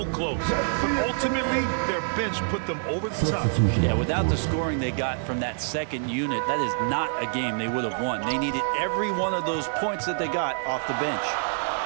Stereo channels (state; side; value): silent; left; 61 dB below the other